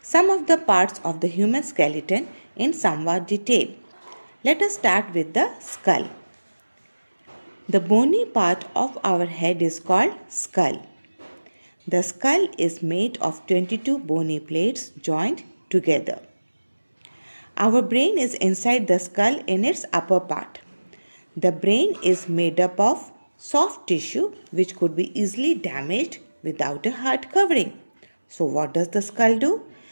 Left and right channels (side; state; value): both; inverted; correlation -1.00